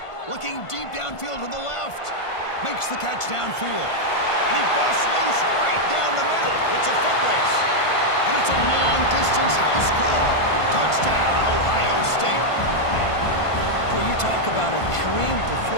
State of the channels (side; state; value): right; late; 1.5 ms